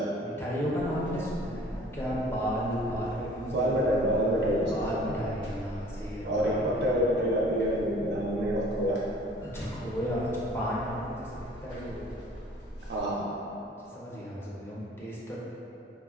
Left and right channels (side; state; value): both; normal; correlation 0.50